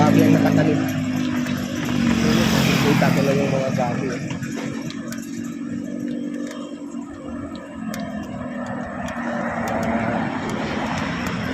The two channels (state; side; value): identical; both; correlation 1.00